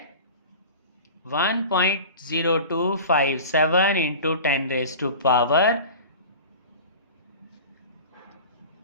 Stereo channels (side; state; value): both; inverted; correlation -0.36